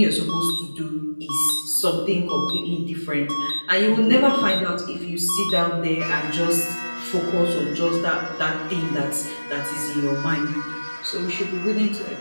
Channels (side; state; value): both; inverted; correlation -1.00